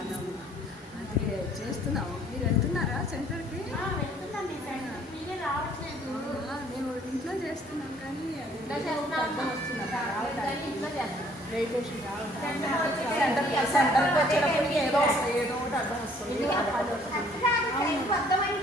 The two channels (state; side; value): normal; both; correlation 0.60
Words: అది చేస్తున్నాము. మీరు వెళ్తున్నారా సెంటర్కి? మేము ఇంట్లో చేస్తున్నాం, కానీ సెంటర్కి వచ్చేటప్పటికి ఏదో ఒకటి అర్థం వస్తుంది.